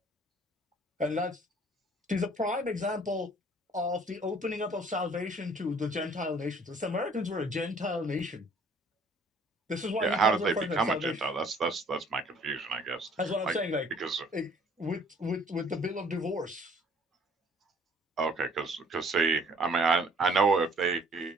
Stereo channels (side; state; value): both; normal; correlation 0.57